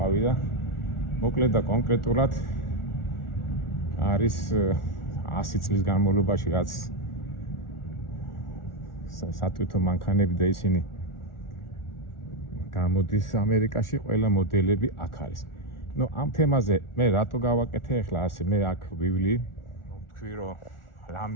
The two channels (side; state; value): right; late; 1.4 ms